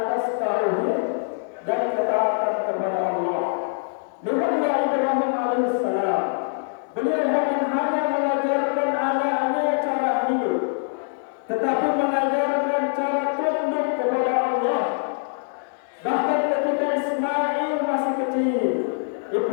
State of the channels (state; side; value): silent; right; digital silence